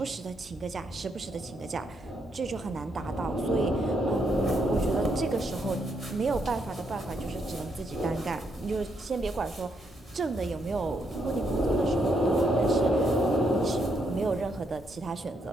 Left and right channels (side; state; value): both; normal; correlation 0.77